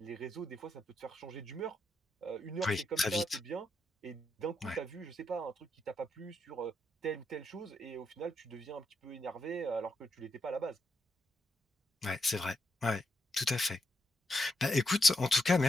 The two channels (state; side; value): normal; both; correlation 0.81